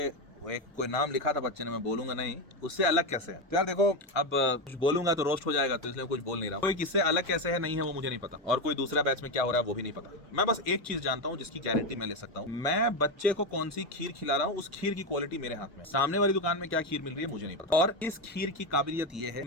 वो एक कोई नाम लिखा था बच्चे ने, मैं बोलूंगा नहीं, उससे अलग कैसे है। तो यार देखो, अब कुछ बोलूंगा तो रोस्ट हो जाएगा, तो इसलिए कुछ बोल नहीं रहा। कोई किससे अलग कैसे है नहीं है वो मुझे नहीं पता, और कोई दूसरा बैच में क्या हो रहा है वो भी नहीं पता। मैं बस एक चीज जानता हूँ जिसकी गारंटी मैं ले सकता हूँ, मैं बच्चे को कौन सी खीर खिला रहा हूँ उस खीर की क्वालिटी मेरे हाथ में। सामने वाली दुकान में क्या खीर मिल रही है मुझे नहीं पता। और इस खीर की काबिलियत ये है,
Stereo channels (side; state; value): both; normal; correlation 0.11